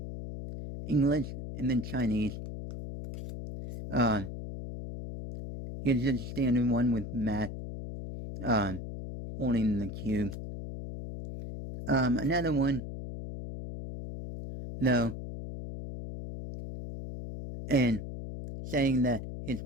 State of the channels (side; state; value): left; noise; hum, 8 dB below the sound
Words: English, and then Chinese. Here's just a standard one with Matt, holding the cube. Another one, no, and saying that his